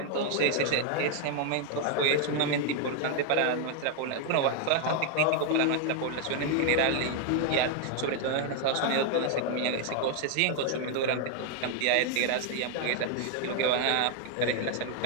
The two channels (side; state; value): both; different; correlation 0.00